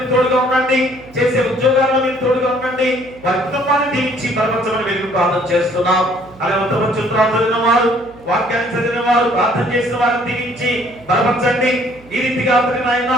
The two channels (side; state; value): right; noise; hum, 24 dB below the sound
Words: తోడుగా ఉండండి, చేసే ఉద్యోగాల్లో మీరు తోడుగా ఉండండి, వారి కుటుంబాన్ని దీవించి బలపరచమని మీరు ప్రార్థన చేస్తున్నాం. అలాగే ఉత్తమ చిత్రాలు చదివిన వారు, వాక్యాన్ని చదివిన వారు, ప్రార్థన చేసిన వారిని దీవించి బలపరచండి. ఈ రీతిగా ఆయన